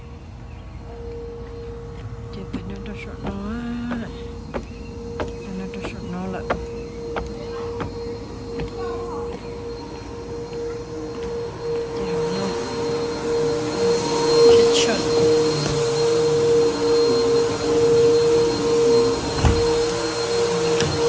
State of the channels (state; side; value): identical; both; correlation 1.00